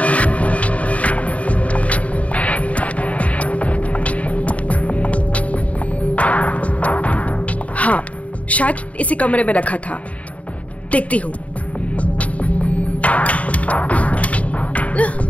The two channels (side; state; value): right; late; 0.067 ms